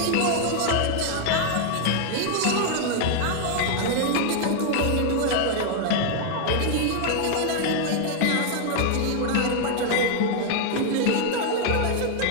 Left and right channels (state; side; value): different; both; correlation 0.00